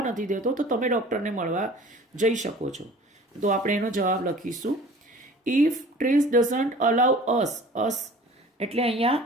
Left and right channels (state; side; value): normal; both; correlation 0.45